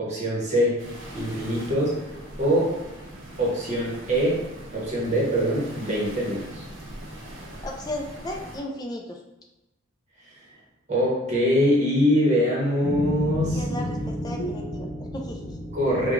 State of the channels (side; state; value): both; normal; correlation 0.50